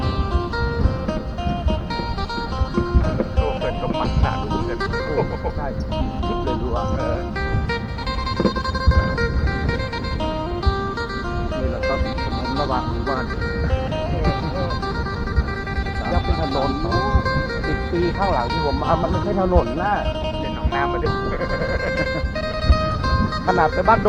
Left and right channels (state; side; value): identical; both; correlation 1.00